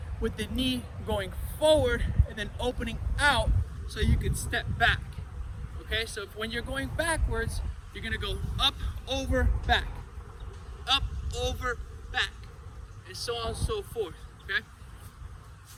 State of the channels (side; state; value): both; identical; correlation 1.00